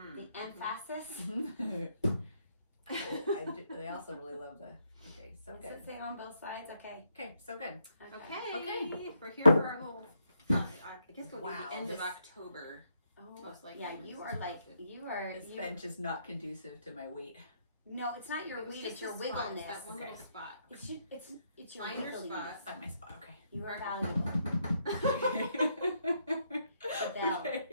The emphasis? They also really love the... Okay, so Does good. it say on both sides? Okay. Okay, so good. Okay. We're here for our whole... I guess it'll be the end of October. Oh, most likely. yeah, you are like... You are... This bench is not conducive to my weight. No, it's not your weight, it's your wiggleness. That one little spot. It's your Find your wiggliness. spot. Find my spot, okay. You are valuable. Bell.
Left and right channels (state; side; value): inverted; both; correlation -0.76